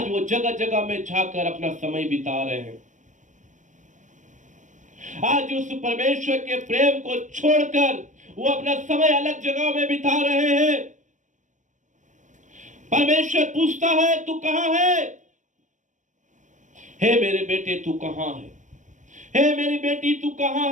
वो जगह जगह में जाकर अपना समय बिता रहे हैं। आज उस परमेश्वर के प्रेम को छोड़कर वो अपना समय अलग जगह में बिता रहे हैं। परमेश्वर पूछता है, तू कहां है? हे मेरे बेटे तू कहां है? हे मेरी बेटी तू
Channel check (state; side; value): late; left; 0.36 ms